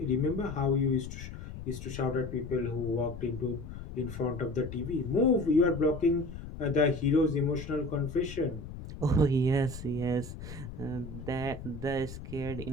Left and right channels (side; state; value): left; noise; rumble, 10 dB below the sound